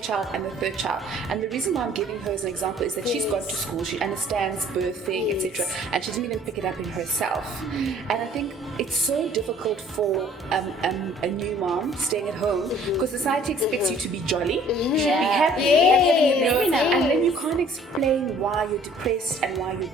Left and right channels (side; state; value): both; normal; correlation 0.55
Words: child, and the 3rd child. And the reason why I'm giving her as an example is that she's gone to school, she understands birthing, etc., and she didn't even pick it up in herself. And I think it's so difficult for a new mom staying at home, because society expects you to be jolly, you should be happy, and then you can't explain why you're depressed and why you're